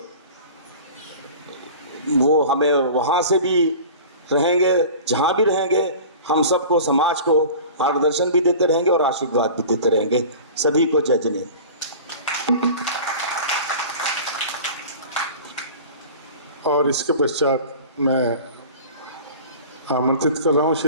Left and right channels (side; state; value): both; inverted; correlation -0.39